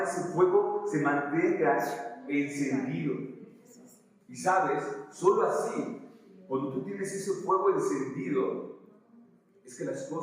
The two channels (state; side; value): identical; both; correlation 1.00